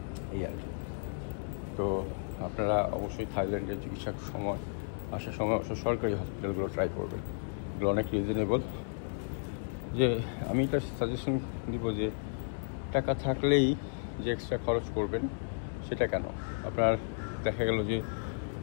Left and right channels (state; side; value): silent; right; digital silence